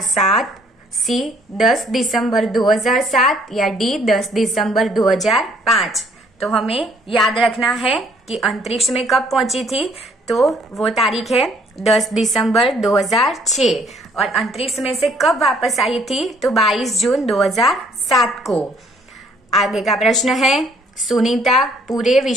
सी 10 दिसंबर 2007 या डी 10 दिसंबर 2005। तो हमें याद रखना है कि अंतरिक्ष में कब पहुंची थी। तो वो तारीख है 10 दिसंबर 2006, और अंतरिक्ष में से कब वापस आई थी? तो 22 जून 2007 को। आगे का प्रश्न है, सुनीता पूरे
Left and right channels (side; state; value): both; normal; correlation 0.63